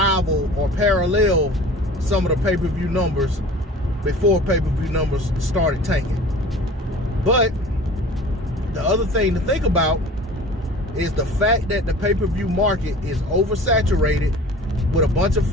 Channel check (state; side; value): normal; both; correlation 0.43